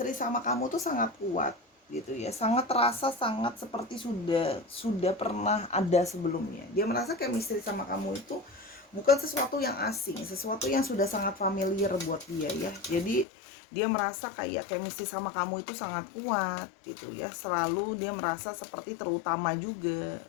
sama kamu tuh sangat kuat, gitu ya. Sangat terasa, sangat seperti sudah pernah ada sebelumnya. Dia merasa chemistry sama kamu itu bukan sesuatu yang asing, sesuatu yang sudah sangat familiar buat dia ya. Jadi dia merasa kayak chemistry sama kamu itu sangat kuat, gitu ya. Selalu dia merasa seperti terutama juga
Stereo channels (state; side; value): drops out; right; at 13.2 s